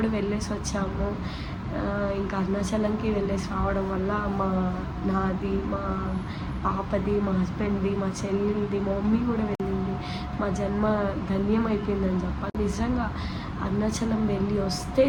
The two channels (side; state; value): both; identical; correlation 1.00